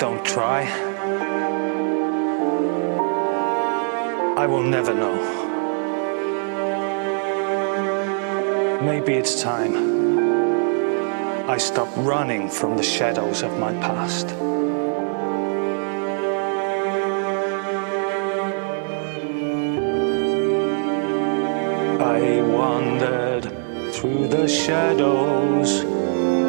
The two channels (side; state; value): left; silent; 55 dB below the other